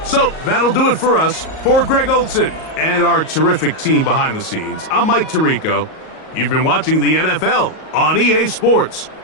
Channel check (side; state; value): right; late; 38 ms